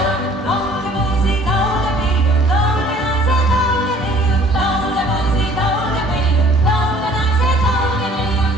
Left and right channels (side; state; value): both; normal; correlation 0.54